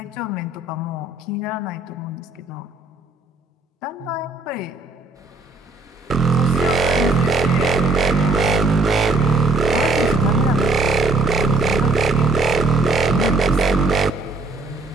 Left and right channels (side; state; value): left; quieter; 3.2 dB